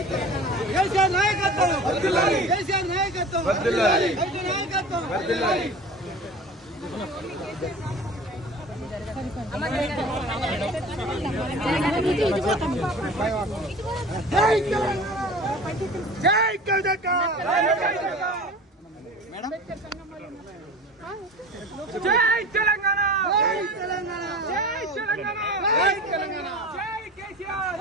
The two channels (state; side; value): normal; both; correlation 0.38